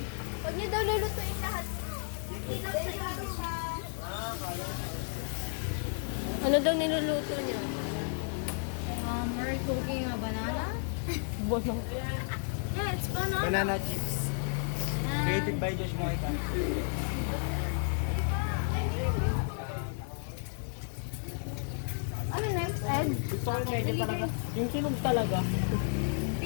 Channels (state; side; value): silent; right; 56 dB below the other